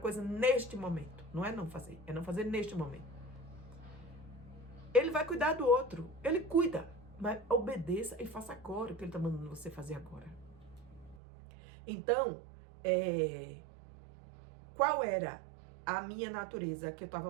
neste momento. Não é não fazer, é não fazer neste momento. Ele vai cuidar do outro. Ele cuida. Mas obedeça e faça agora o que Ele está mandando você fazer agora. Então, qual era a minha natureza que eu estava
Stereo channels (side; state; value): left; drops out; at 11.2 s